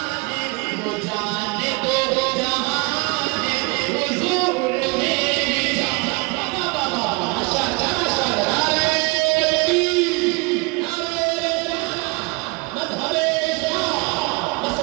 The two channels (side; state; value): left; quieter; 27.9 dB